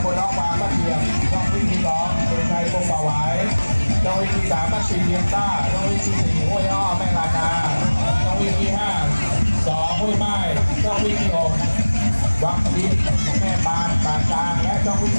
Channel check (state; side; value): inverted; both; correlation -1.00